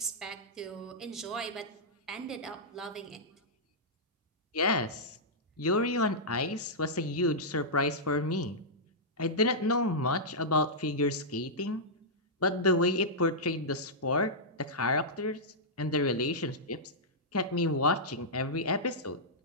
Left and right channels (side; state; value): both; normal; correlation -0.11